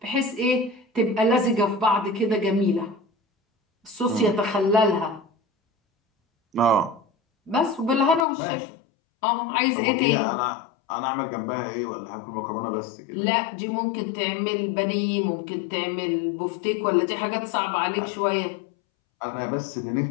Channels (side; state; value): right; drops out; at 8.2 s